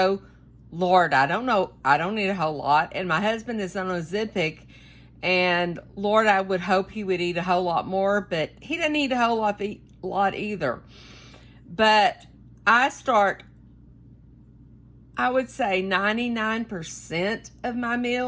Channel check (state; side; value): identical; both; correlation 1.00